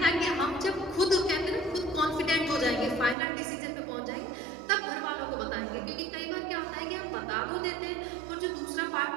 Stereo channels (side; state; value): left; drops out; at 3.2 s